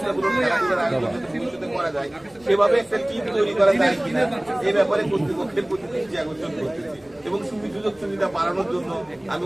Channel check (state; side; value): noise; left; rumble, 29 dB below the sound